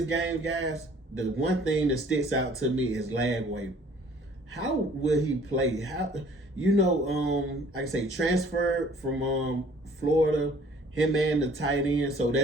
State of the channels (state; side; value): normal; both; correlation 0.55